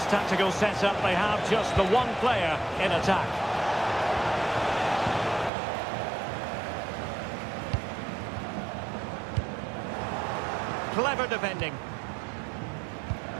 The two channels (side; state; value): left; drops out; at 5.5 s